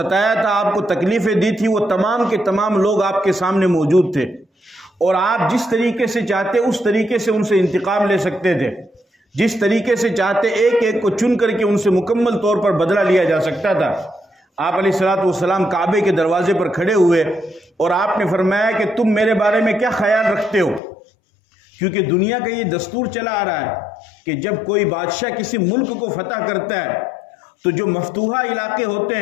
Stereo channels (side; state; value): right; drops out; at 20.8 s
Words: تھا، آپ کو تکلیفیں دی تھی، وہ تمام کے تمام لوگ آپ کے سامنے موجود تھے، اور آپ جس طریقے سے چاہتے اس طریقے سے ان سے انتقام لے سکتے تھے، جس طریقے سے چاہتے ایک ایک کو چن کر کے ان سے مکمل طور پر بدلہ لیا جا سکتا تھا۔ آپ علیہ الصلوۃ والسلام کعبے کے دروازے پر کھڑے ہوئے اور آپ نے فرمایا کہ تم میرے بارے میں کیا خیال رکھتے ہو، کیونکہ دنیا کا یہ دستور چلا آ رہا ہے کہ جب کوئی بادشاہ کسی ملک کو فتح کرتا ہے تو جو مفتوحہ علاقے ہوتے